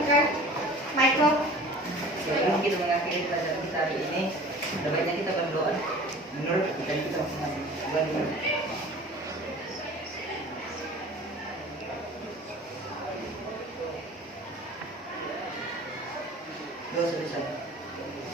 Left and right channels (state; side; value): normal; both; correlation 0.43